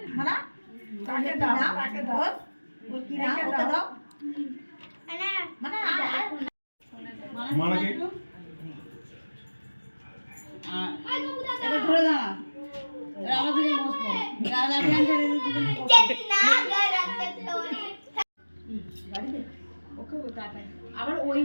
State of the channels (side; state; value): both; inverted; correlation -1.00